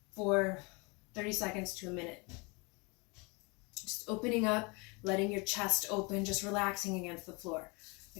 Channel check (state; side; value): quieter; right; 29.4 dB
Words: for 30 seconds to a minute. Just opening up, letting your chest open, just relaxing against the floor.